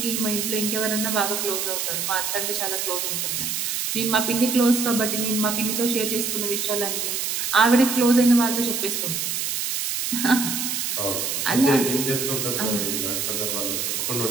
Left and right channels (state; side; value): noise; right; hiss, 1 dB below the sound